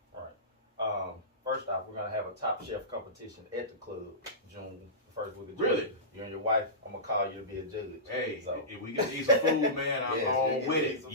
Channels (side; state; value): both; normal; correlation -0.20